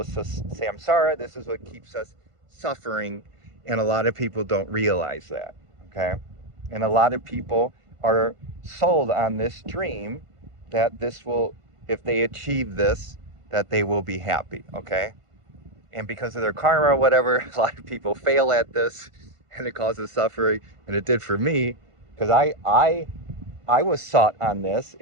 samsara. This is what keeps us suffering. And a lot of people don't realize that, okay? And a lot of people are sold on this dream that this will, if they achieve this, that they will be happy, okay? And because of their karma or whatever, a lot of people fail at this, and it causes suffering, and it did for me, because I was sought on this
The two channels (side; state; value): left; late; 1.5 ms